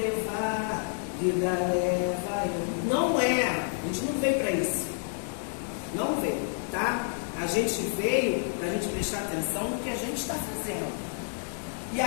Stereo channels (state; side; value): silent; right; 58 dB below the other